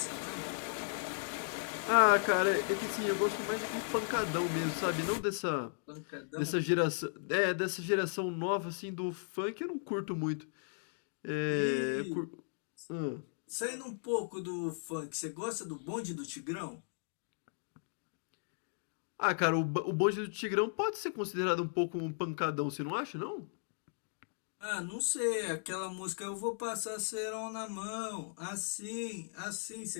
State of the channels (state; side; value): silent; right; digital silence